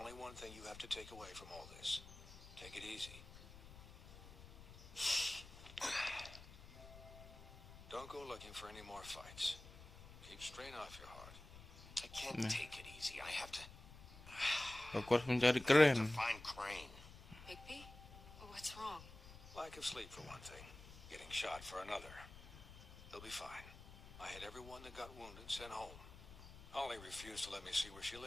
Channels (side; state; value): left; noise; rumble, 16 dB below the sound